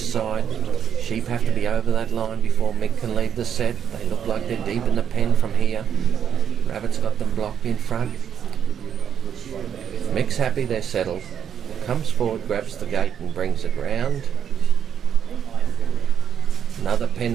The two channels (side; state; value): left; quieter; 8.5 dB